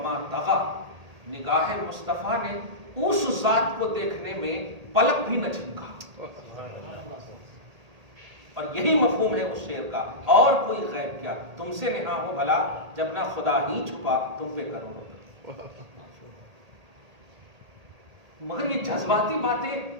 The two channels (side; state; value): left; late; 1.8 ms